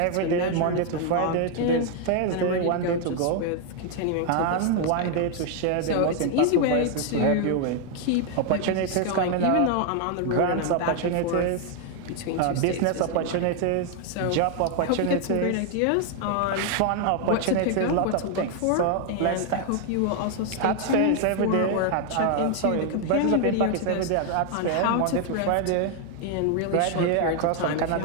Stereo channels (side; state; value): both; different; correlation 0.00